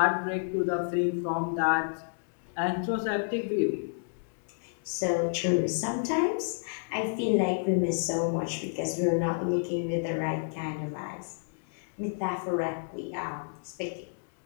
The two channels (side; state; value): right; silent; digital silence